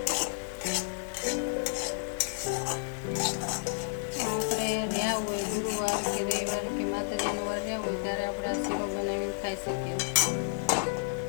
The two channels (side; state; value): right; silent; 57 dB below the other